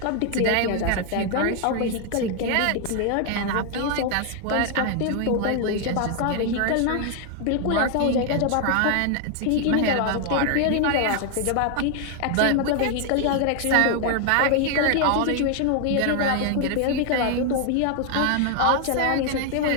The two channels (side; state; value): both; different; correlation 0.00